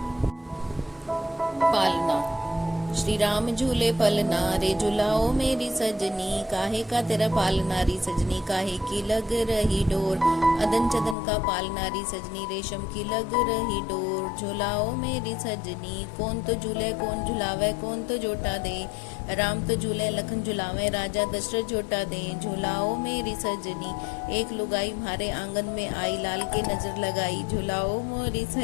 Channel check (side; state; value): right; drops out; at 11.2 s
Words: पालना। श्री राम झूले पलना रे, झुलाओ मेरी सजनी, काहे का तेरा पालना री सजनी, काहे की लग रही डोर। अदन चदन का पालना री सजनी, रेशम की लग रही डोर। झुलाओ मेरी सजनी, कौन तो झूले कौन झुलावे, कौन तो जोटा दे। राम तो झूले लखन झुलावे, राजा दशरथ जोटा दे। झुलाओ मेरी सजनी, एक लुगाई म्हारे आंगन में आई, लाल के नजर लगाई। झुलाओ मोरी